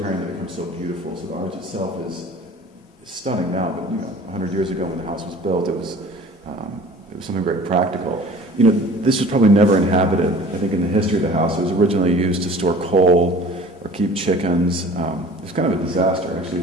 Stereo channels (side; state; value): both; normal; correlation 0.45